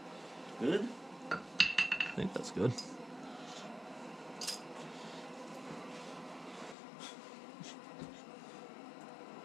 Good? I think that's good.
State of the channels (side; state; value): right; drops out; at 6.8 s